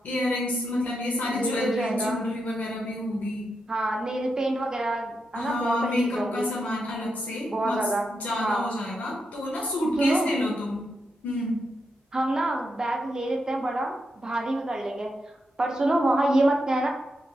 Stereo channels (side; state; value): both; normal; correlation 0.84